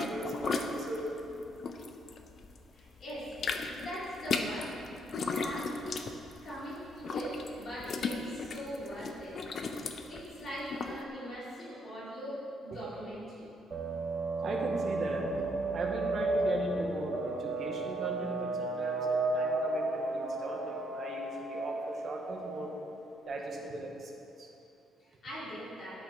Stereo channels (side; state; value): both; normal; correlation 0.71